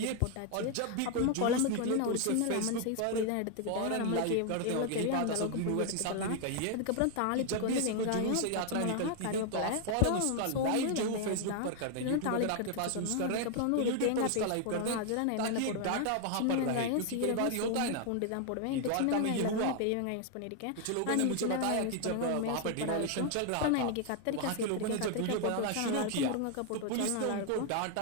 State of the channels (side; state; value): both; different; correlation 0.00